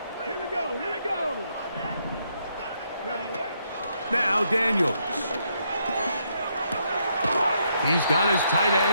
Here we go, here we go. Now Daniels. He's got his tight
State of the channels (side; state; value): both; inverted; correlation -0.75